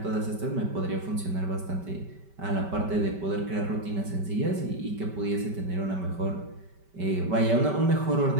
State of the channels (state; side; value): late; left; 5.2 ms